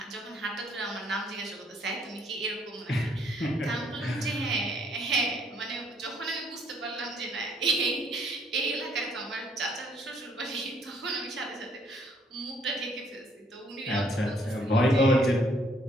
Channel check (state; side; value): normal; both; correlation 0.65